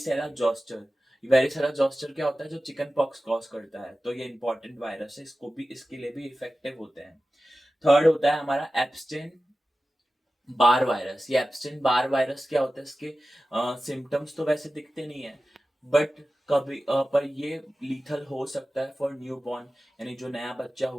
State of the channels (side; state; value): both; normal; correlation 0.95